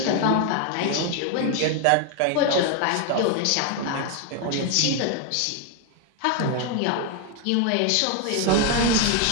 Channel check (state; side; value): different; both; correlation 0.01